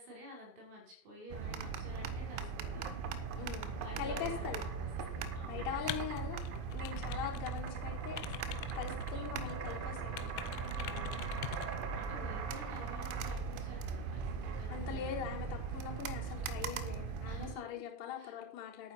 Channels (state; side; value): late; left; 2.5 ms